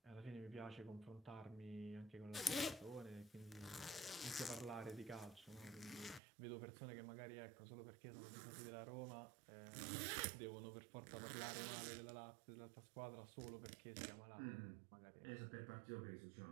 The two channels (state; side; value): drops out; left; at 6.2 s